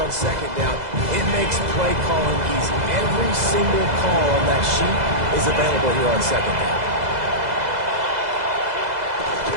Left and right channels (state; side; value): late; left; 2.0 ms